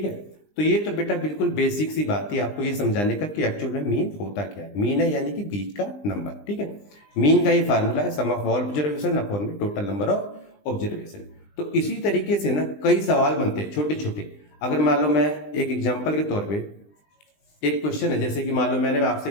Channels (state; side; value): late; right; 20 ms